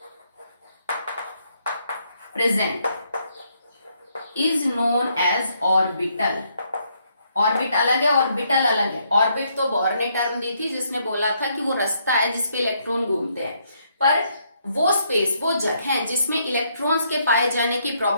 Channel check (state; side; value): inverted; both; correlation -0.73